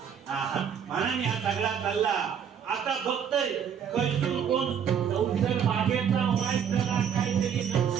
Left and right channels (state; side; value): quieter; left; 8.0 dB